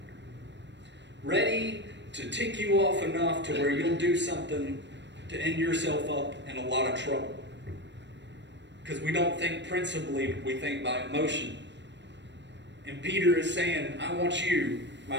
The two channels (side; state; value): left; late; 0.52 ms